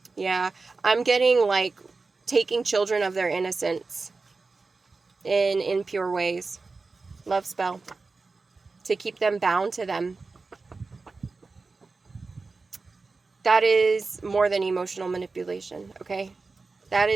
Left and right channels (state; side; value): quieter; left; 4.0 dB